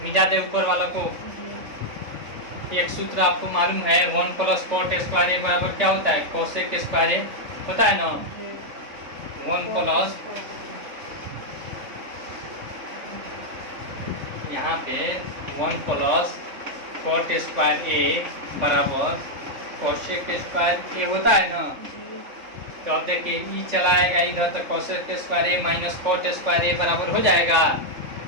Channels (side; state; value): left; late; 3.5 ms